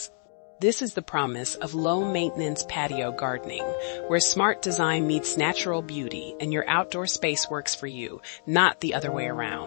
This is the promise of low-maintenance patio gardening, where smart design meets natural beauty and your outdoor space works for you, not the other way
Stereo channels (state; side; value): silent; right; digital silence